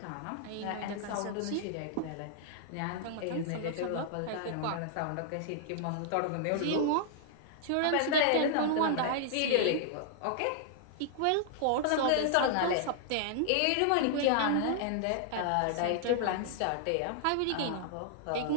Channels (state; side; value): different; both; correlation -0.01